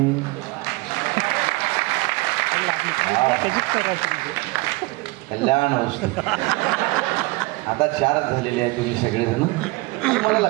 कल्याण वस्तू. आता 4 झालेले आहे तुम्ही सगळेजण. मला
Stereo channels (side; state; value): left; quieter; 23.9 dB